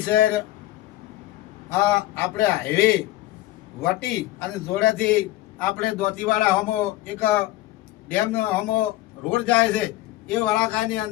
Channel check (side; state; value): right; quieter; 16.3 dB